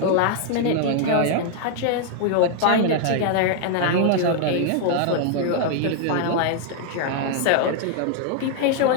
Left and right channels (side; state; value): both; different; correlation 0.00